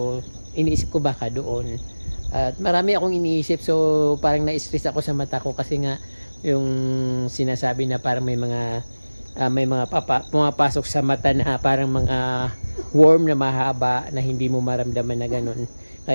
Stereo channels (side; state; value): both; inverted; correlation -1.00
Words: iniisip ko baka doon, at marami akong iniisip. So parang na-stress ako sa mata ko kasi nga yung sinasabi na parang may mga pumapasok sa mata na parang mga worm na mahaba na hindi mo maramdaman na ganun.